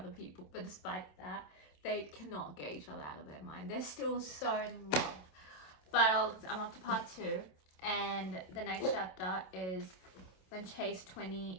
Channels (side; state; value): right; late; 27 ms